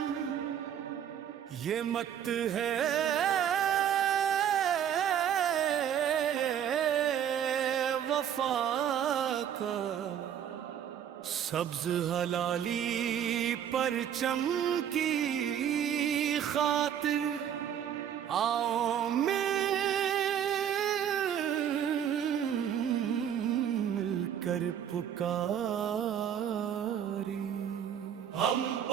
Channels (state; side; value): quieter; left; 9.3 dB